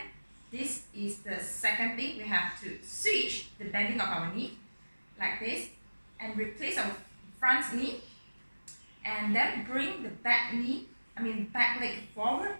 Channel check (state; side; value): inverted; both; correlation -1.00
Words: this is the second thing. We have to switch the bending of our knee like this and replace our front knee, and then bring the back leg forward